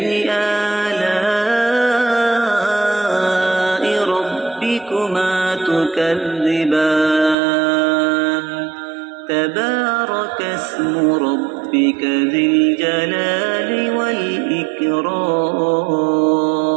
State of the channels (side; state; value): left; drops out; at 7.4 s